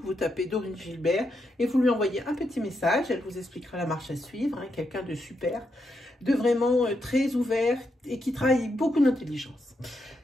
Vous tapez Dorine Gilbert et vous lui envoyez un petit message. Elle vous expliquera la marche à suivre. Hein, quelqu'un de super, de vraiment très ouvert et qui travaille beaucoup d'intelligence.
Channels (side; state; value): both; normal; correlation 0.82